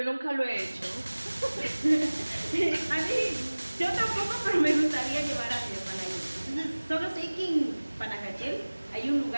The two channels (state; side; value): inverted; both; correlation -1.00